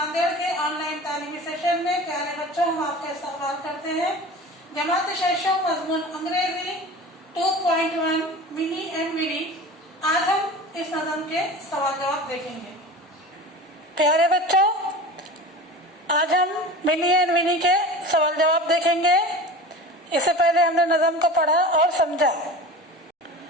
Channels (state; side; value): normal; both; correlation 0.35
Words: के ऑनलाइन तालीमी सेशन में प्यारे बच्चों हम आपका इस्तकबाल करते हैं। जमात शेषों मजमून अंग्रेजी 2.1 मिनी एंड विनी। आज हम इस नज़म के सवाल जवाब देखेंगे। प्यारे बच्चों, आज हम मिनी एंड विनी के सवाल जवाब देखेंगे। इससे पहले हमने नज़म को पढ़ा और समझा।